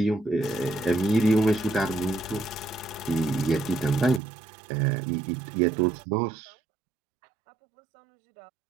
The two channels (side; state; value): left; drops out; at 4.2 s